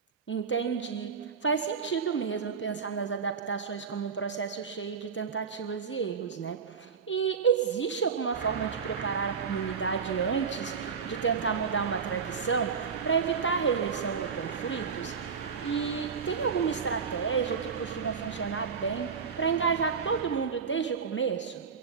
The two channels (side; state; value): left; quieter; 6.0 dB